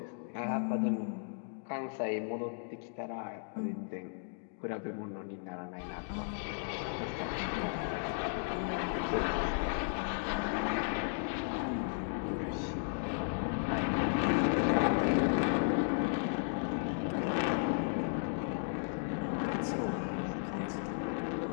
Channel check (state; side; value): silent; right; digital silence